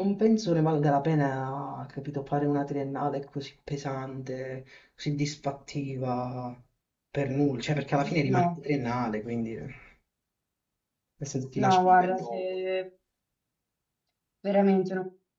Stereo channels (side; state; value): both; identical; correlation 1.00